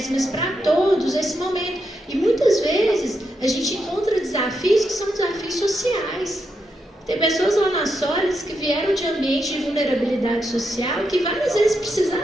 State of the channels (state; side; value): normal; both; correlation 0.83